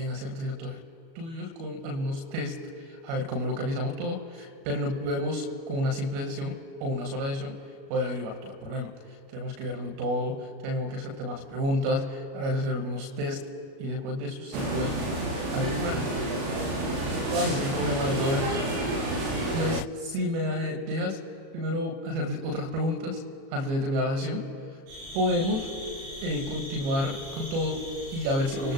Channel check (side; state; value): left; late; 37 ms